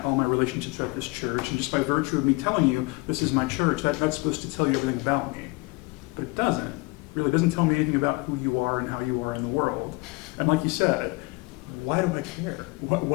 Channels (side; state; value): right; quieter; 25.8 dB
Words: all my relationships are at this church, and just by virtue of me telling you this is my church, that's supposed to tell you everything about me. But it doesn't. It really doesn't tell me anything about who you are and how you are in the world. And like you said, why do I care?